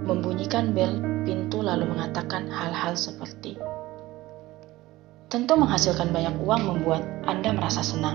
membunyikan bel pintu lalu mengatakan hal-hal seperti, tentu menghasilkan banyak uang membuat Anda merasa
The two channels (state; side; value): quieter; left; 17.9 dB